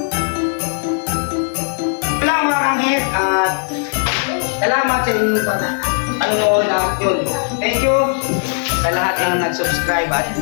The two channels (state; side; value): silent; right; 62 dB below the other